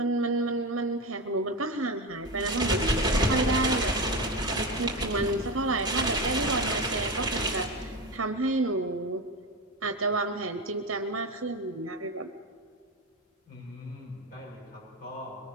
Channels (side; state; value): both; normal; correlation 0.19